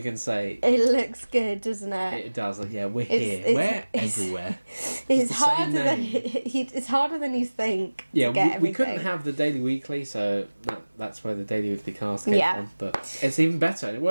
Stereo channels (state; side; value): inverted; both; correlation -1.00